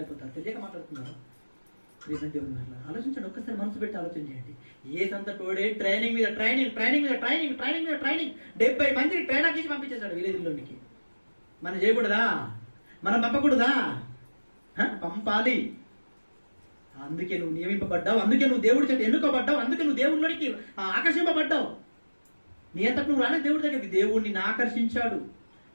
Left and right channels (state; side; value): inverted; both; correlation -1.00